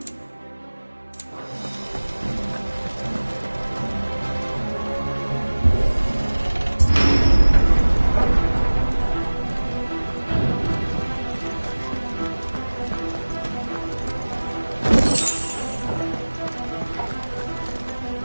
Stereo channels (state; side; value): inverted; both; correlation -1.00